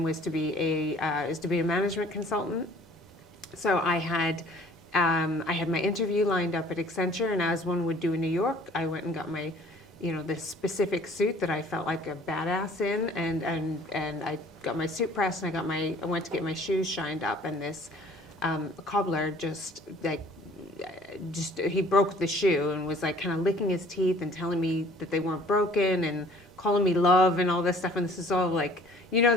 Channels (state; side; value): normal; both; correlation 0.53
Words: was to be a management consultant. So I had my interview lined up at Accenture, and as one would do in New York, I went and got my, this specific suit that I felt like a badass in, and I got my suit pressed, and I went to get my shoes shined up, and this cobbler he broke the shoe and was like kind of licking his teeth and telling me that they weren't broken and calling me love and all this stuff. And this is all like,